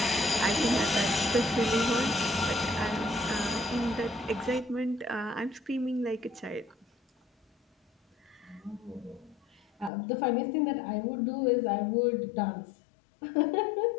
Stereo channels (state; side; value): drops out; right; at 9.9 s